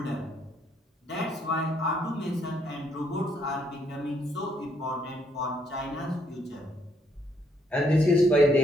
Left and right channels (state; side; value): normal; both; correlation 0.71